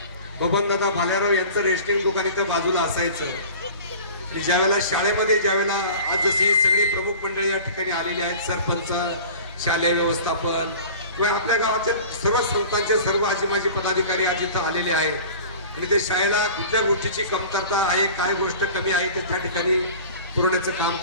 बबनदादा भालेराव यांचं रेस्टिंग दुकान इथं बाजूला असायचं. आणि ज्यावेळेला शाळेमध्ये ज्यावेळेला आज जशी ही सगळी प्रमुख मंडळी या ठिकाणी आलेली आहेत, सरपंच, शालेय व्यवस्थापन किंवा आपल्या गावाचे सर्व संस्थांचे सर्व आजी पदाधिकारी आज इथं आलेले आहेत आणि ते शाळेला कुठल्या गोष्टीची कमतरता आहे, काय गोष्ट कमी आहे ते त्या ठिकाणी पुरवण्याचं काम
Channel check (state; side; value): inverted; both; correlation -0.41